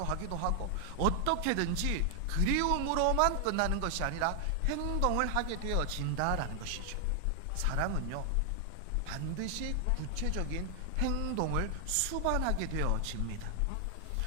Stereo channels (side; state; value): both; different; correlation 0.00